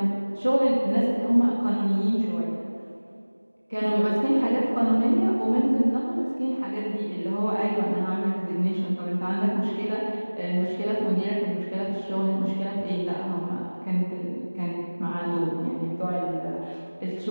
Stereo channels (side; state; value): both; inverted; correlation -1.00